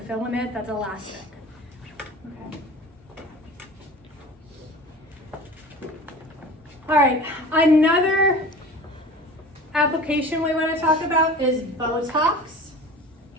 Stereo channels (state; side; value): normal; both; correlation 0.38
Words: filament that's elastic. Okay. All right, another application we want to talk about is Botox.